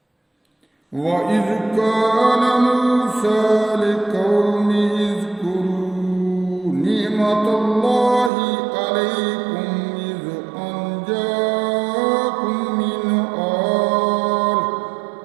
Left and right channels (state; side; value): drops out; left; at 8.3 s